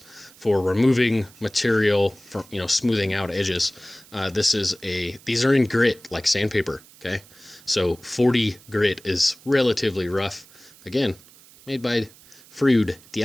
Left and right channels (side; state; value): right; noise; hiss, 24 dB below the sound